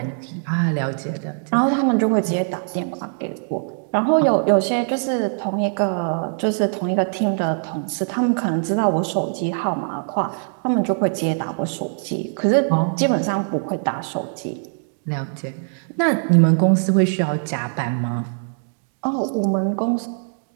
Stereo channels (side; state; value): left; silent; digital silence